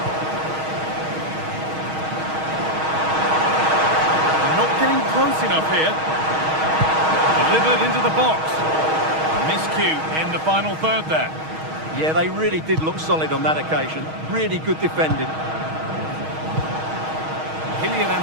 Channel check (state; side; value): late; left; 6.3 ms